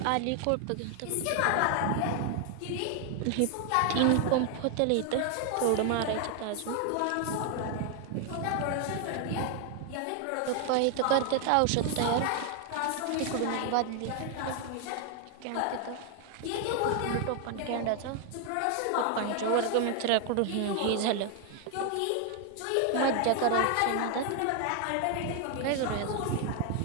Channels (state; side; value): different; both; correlation 0.00